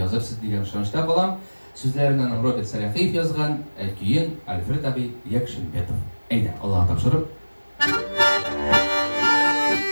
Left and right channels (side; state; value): both; inverted; correlation -1.00